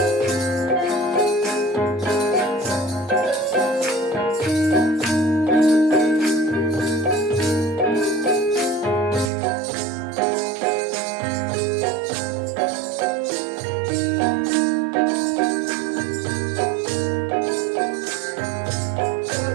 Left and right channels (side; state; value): left; drops out; at 9.3 s